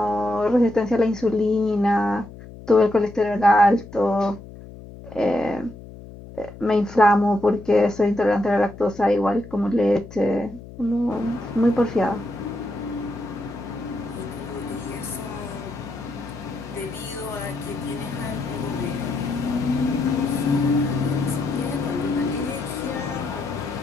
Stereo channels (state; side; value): noise; left; hum, 16 dB below the sound